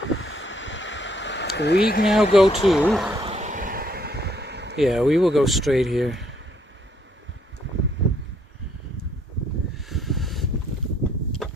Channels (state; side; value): normal; both; correlation 0.68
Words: We now go to... Yeah, we will go straight here.